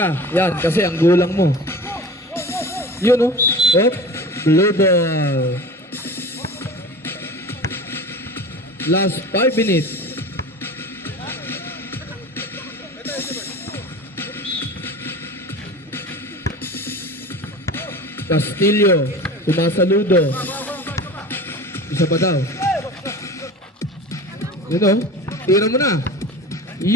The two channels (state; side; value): normal; both; correlation 0.37